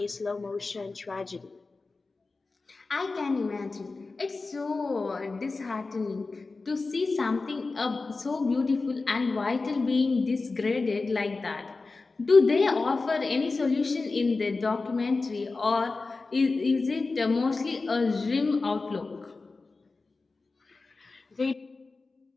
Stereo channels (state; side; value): quieter; right; 3.8 dB